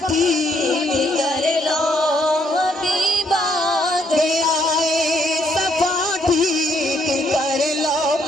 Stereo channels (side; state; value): both; normal; correlation 0.71